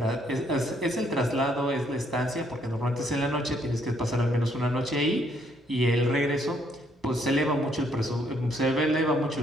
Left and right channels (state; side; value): normal; both; correlation 0.69